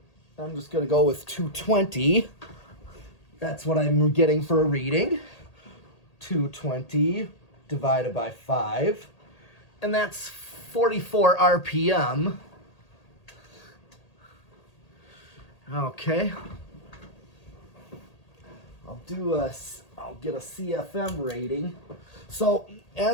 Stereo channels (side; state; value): right; late; 1.8 ms